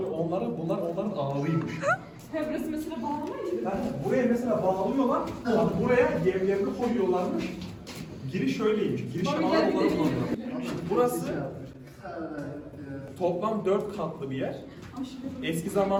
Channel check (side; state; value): both; identical; correlation 1.00